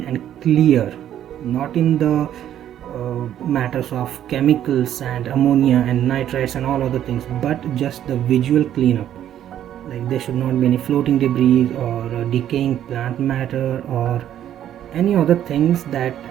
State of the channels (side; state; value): left; quieter; 10.9 dB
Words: and clear, not in the matters of chemicals and ammonia and nitrites and all other things, but just the visual cleanup. Like there should not be any floating debris or decaying plant matter or any other things that